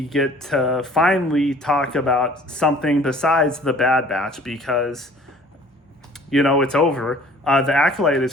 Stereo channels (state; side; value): normal; both; correlation 0.52